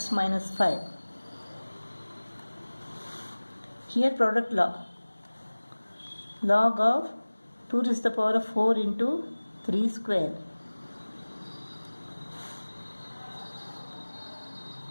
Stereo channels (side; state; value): both; inverted; correlation -1.00